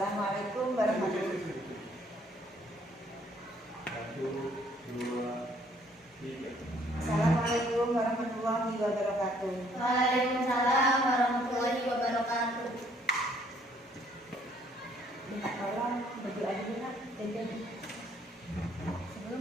warahmatullahi wabarakatuh. Satu, dua, tiga. Assalamualaikum warahmatullahi wabarakatuh. Waalaikumsalam warahmatullahi wabarakatuh. Minta tolong berdoa dulu nak. Sebelum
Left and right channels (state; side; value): normal; both; correlation 0.64